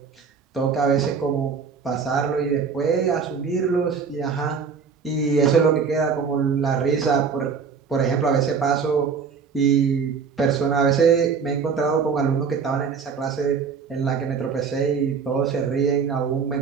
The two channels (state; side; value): quieter; left; 5.9 dB